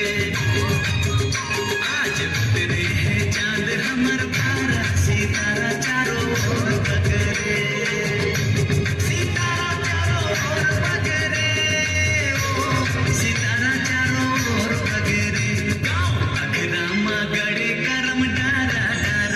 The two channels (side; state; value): both; identical; correlation 1.00